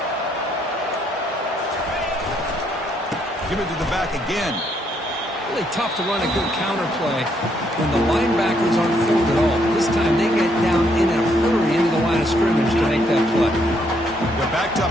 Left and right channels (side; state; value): both; normal; correlation 0.72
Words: Give it to the back again. Really tough to run a good counter play when the linebackers aren't formed at all. This time they get down in a hurry into the line of scrimmage to make that play. They're backed